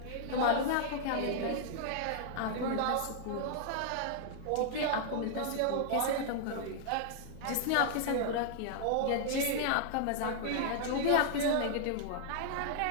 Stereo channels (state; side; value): different; both; correlation -0.01